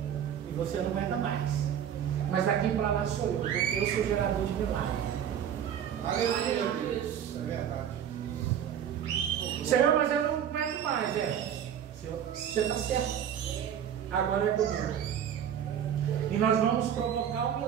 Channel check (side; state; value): left; quieter; 9.2 dB